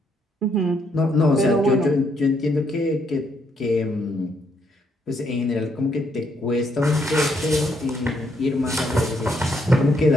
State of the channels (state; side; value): normal; both; correlation 0.73